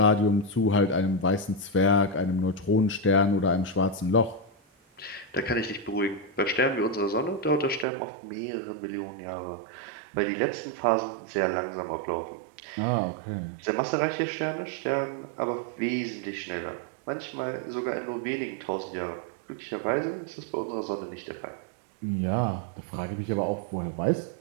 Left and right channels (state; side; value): drops out; left; at 7.9 s